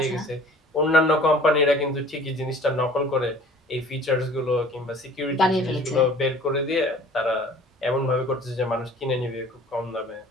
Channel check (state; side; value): normal; both; correlation 0.49